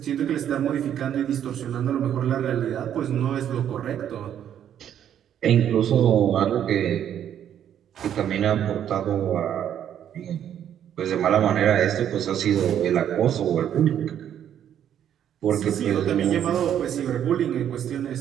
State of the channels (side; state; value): left; quieter; 9.9 dB